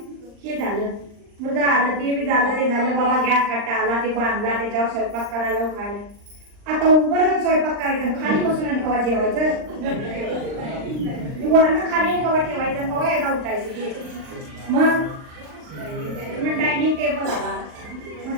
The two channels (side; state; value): left; late; 39 ms